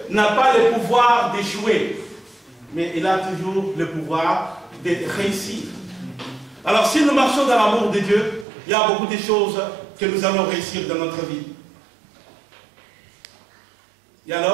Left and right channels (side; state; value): left; drops out; at 8.5 s